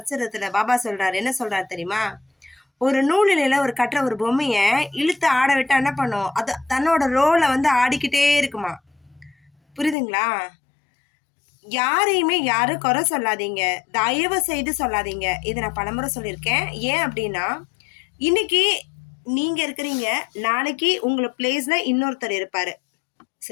பாபா சொல்றாரு, என்ன சொல்றாரு தெரியுமா? ஒரு நூலிலையில ஒரு கட்டுற ஒரு பொம்மைய இழுத்து ஆட விட்டா என்ன பண்ணும்? அது தன்னோட ரோலை வந்து ஆடிக்கிட்டே இருக்குமா. புரியுதுங்களா? யாரையுமே யாரும் குறை சொல்லாதீங்க, தயவு செய்து சொல்லாதீங்க. இதை நான் பலமுறை சொல்லியிருக்கேன். ஏன் அப்படின்னா, இன்னைக்கு நீங்க இருக்கிறீங்க, நாளைக்கு உங்களை பிளேஸ்ல இன்னொருத்தர் இருப்பாரு.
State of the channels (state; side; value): drops out; right; at 10.0 s